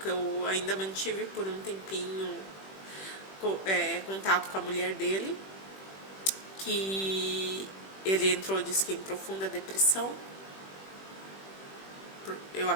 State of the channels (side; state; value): right; late; 21 ms